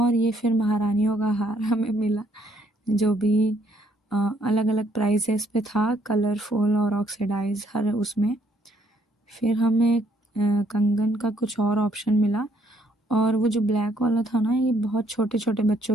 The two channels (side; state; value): both; normal; correlation 0.68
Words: ये फिर महारानियों का हार हमें मिला, जो भी अलग अलग प्राइसेस पे था, कलरफुल और ऑक्सीडाइज हर उसमें। फिर हमें कंगन का कुछ और ऑप्शन मिला, और वो जो ब्लैक वाला था ना, ये बहुत छोटे छोटे